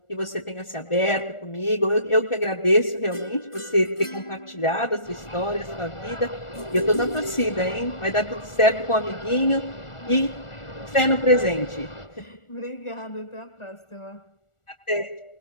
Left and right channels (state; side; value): late; right; 1.4 ms